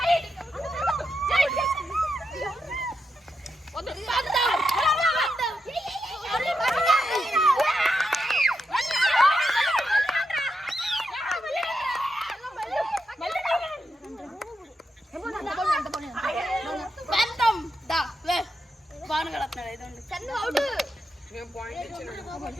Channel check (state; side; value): normal; both; correlation 0.85